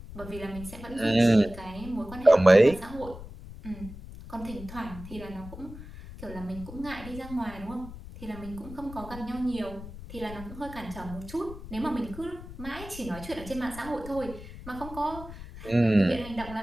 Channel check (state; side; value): noise; left; rumble, 13 dB below the sound